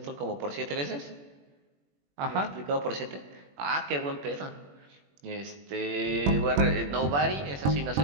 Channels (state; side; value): late; left; 21 ms